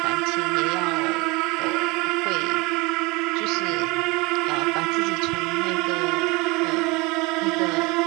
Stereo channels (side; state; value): left; quieter; 25.6 dB